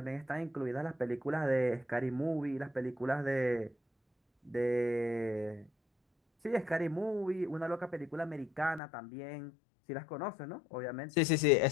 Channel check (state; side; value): drops out; right; at 8.8 s